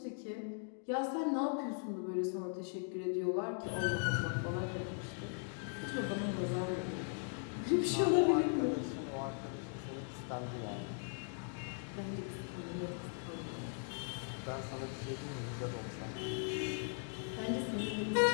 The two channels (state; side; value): silent; right; 52 dB below the other